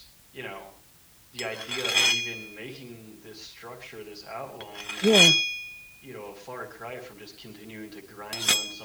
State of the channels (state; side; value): identical; both; correlation 1.00